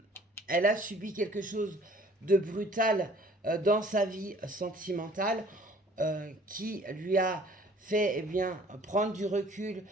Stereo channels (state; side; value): normal; both; correlation 0.54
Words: elle a subi quelque chose de brutal dans sa vie sentimentale, qui lui a fait prendre du recul